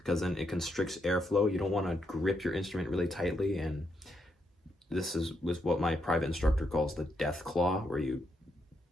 then it constricts airflow. You don't want to grip your instrument really tightly, and this was what my private instructor calls the death claw, where you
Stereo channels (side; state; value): both; normal; correlation 0.80